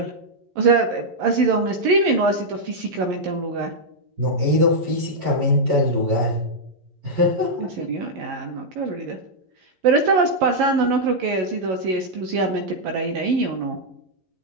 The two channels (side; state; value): left; late; 11 ms